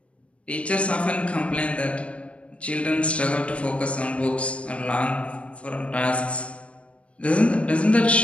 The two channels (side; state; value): right; late; 0.062 ms